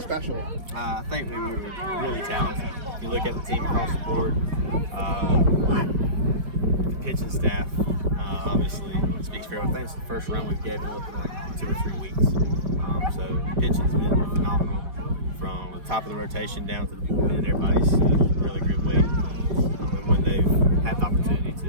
I think we were really talented. If you look at the team across the board, the pitching staff, obviously speaks for everything. It's the first run we've given up in like 2 or 3 weeks. So pitching's been phenomenal from the top of the rotation down to the bullpen. Everybody's really good way and when they've had the opportunity to.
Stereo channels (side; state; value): left; late; 5.1 ms